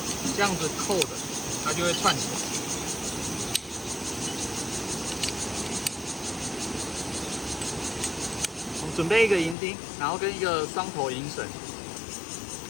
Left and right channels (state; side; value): drops out; right; at 9.6 s